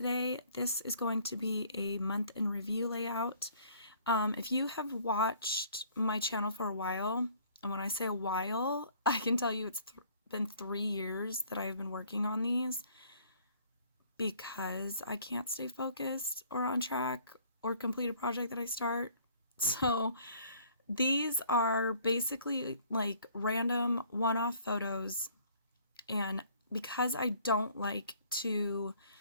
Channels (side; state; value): both; inverted; correlation -0.58